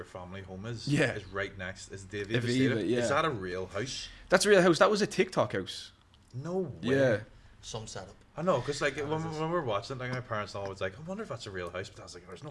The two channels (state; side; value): identical; both; correlation 1.00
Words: family home is right next, is Davy Aviva, yeah. Is that a real house? That's a real house. That was a TikTok house. No way. Yeah. Some setup. I know, because like when we were watching it, like my parents always like, I wonder if that's a real house, but I was like, there's